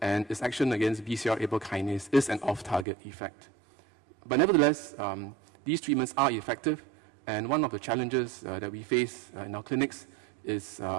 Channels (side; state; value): left; drops out; at 2.9 s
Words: and its action against BCR-ABL kinase is an off-target effect. But nevertheless, these treatments are effective, and one of the challenges that we face in our clinics is